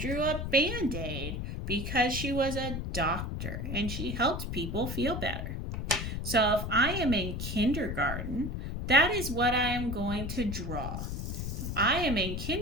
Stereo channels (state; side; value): noise; left; rumble, 4 dB below the sound